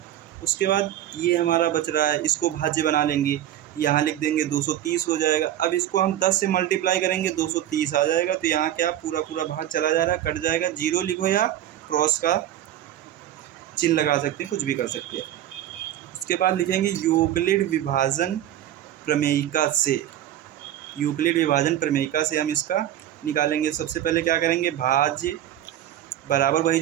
उसके बाद ये हमारा बच रहा है, इसको भाज्य बना लेंगे, यहाँ लिख देंगे 230 हो जाएगा। अब इसको हम 10 से मल्टीप्लाई करेंगे 230 आ जाएगा। तो यहाँ क्या पूरा भाग चला जा रहा है, कट जाएगा। 0 लिखो या क्रॉस का चिन्ह लगा सकते हैं, कुछ भी कर सकते हैं। उसके बाद लिखेंगे यूक्लिड विभाजन प्रमेयिका से। यूक्लिड विभाजन प्रमेयिका से हम इसका निकालेंगे। सबसे पहले क्या करेंगे, भाज्य बराबर वही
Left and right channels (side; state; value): left; quieter; 12.0 dB